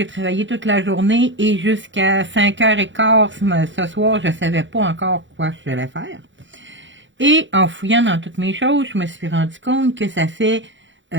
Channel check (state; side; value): late; left; 0.54 ms